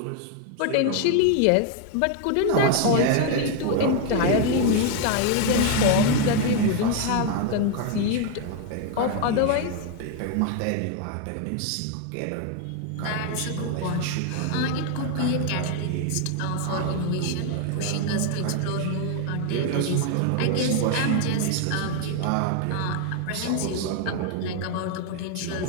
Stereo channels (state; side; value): different; both; correlation 0.01